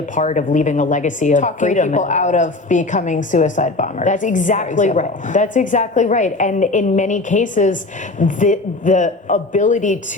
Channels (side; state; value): right; quieter; 3.1 dB